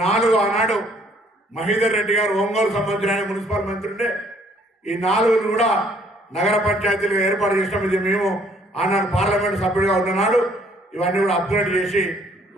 4 ఆనాడు మహీధర్ రెడ్డి గారు ఒంగోలు సంబంధించిన మున్సిపల్ మంత్రి ఉండే, ఈ 4 కూడా నగర పంచాయతీలు ఏర్పాటు చేసినాం. ఇది మేము ఆనాడు పార్లమెంటు సభ్యుడిగా ఉన్ననాడు ఇవన్నీ కూడా అప్గ్రేడ్ చేసి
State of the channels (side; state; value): both; normal; correlation 0.62